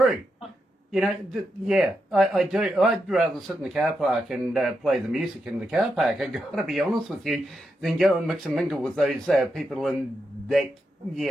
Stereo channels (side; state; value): both; normal; correlation 0.85